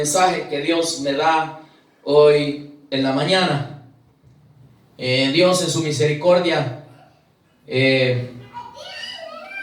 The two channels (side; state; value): both; identical; correlation 1.00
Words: que Dios me da hoy en la mañana. Dios en su misericordia,